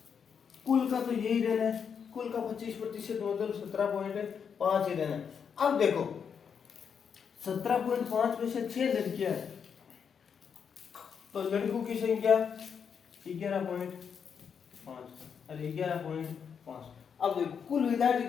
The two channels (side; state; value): right; quieter; 7.0 dB